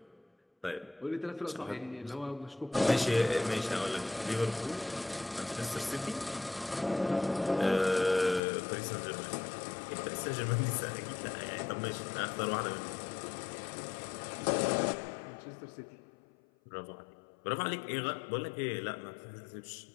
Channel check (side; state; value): right; drops out; at 8.4 s